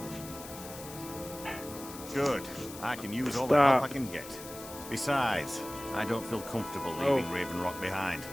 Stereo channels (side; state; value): left; noise; hiss, 14 dB below the sound